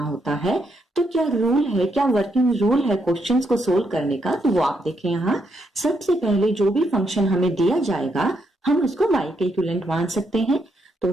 है। तो क्या रूल है, क्या वर्किंग रूल है क्वेश्चंस को सोल्व करने का, तो वो आप देखें यहाँ। सबसे पहले जो भी फंक्शन हमें दिया जाएगा हम उसको y के इक्विवेलेंट मान सकते हैं। तो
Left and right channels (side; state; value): both; normal; correlation 0.78